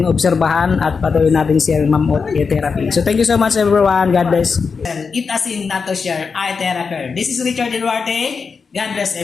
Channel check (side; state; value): right; quieter; 5.3 dB